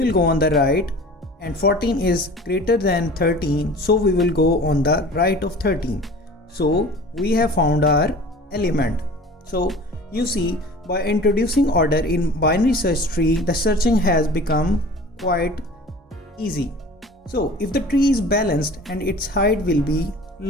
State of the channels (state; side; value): normal; both; correlation 0.42